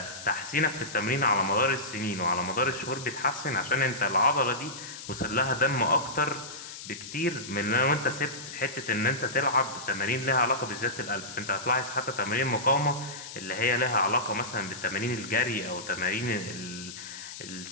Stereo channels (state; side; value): noise; left; hiss, 12 dB below the sound